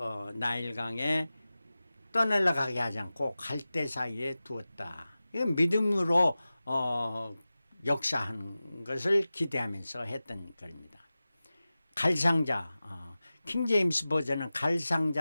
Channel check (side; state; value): both; inverted; correlation -0.96